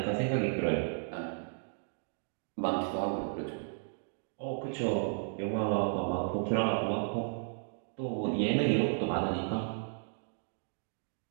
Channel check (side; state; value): left; silent; digital silence